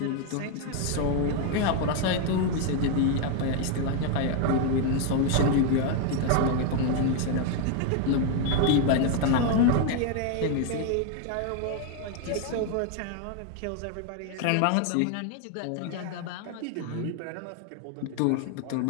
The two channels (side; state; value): both; different; correlation 0.01